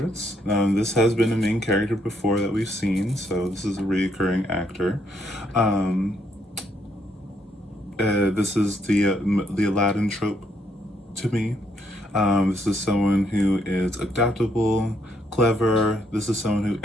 This has been a main character before that we've seen, so this is a recurring actor. This is the Aladdin trope to me. This is someone who is adaptable, clever. This is someone who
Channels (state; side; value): normal; both; correlation 0.73